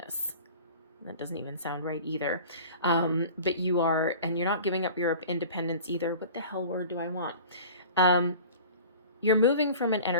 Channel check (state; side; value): inverted; both; correlation -0.41